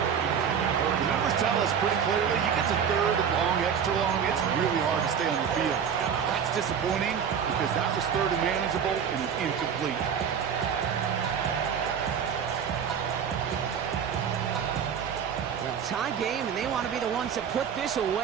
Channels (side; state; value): left; quieter; 7.6 dB